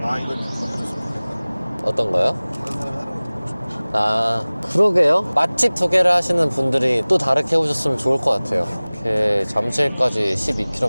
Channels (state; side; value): inverted; both; correlation -1.00